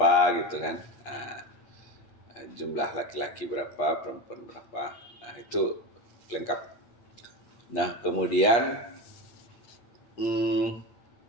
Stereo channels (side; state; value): right; late; 8.5 ms